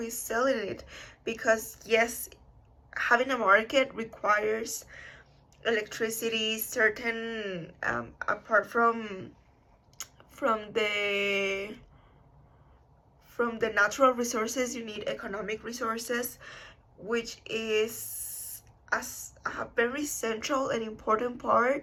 is selling it, because yes, having a market requires electricity, certain apart from the natural resources, you need economic resources, which is a very central and important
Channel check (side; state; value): both; identical; correlation 1.00